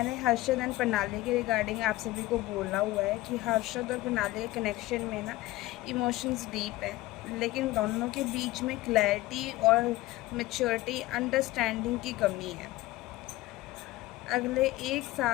हर्षवर्धन प्रणाली के रिगार्डिंग आप सभी को बोला हुआ है कि हर्षवर्धन प्रणाली के कनेक्शन में ना इमोशंस डीप है, लेकिन दोनों के बीच में क्लैरिटी और मैच्योरिटी अंडरस्टैंडिंग की कमी है। अगले 1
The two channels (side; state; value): right; quieter; 18.0 dB